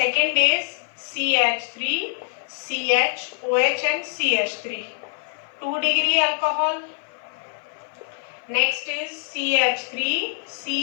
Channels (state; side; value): silent; right; 56 dB below the other